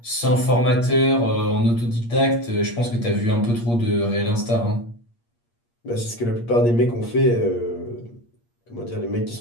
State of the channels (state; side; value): late; right; 8.5 ms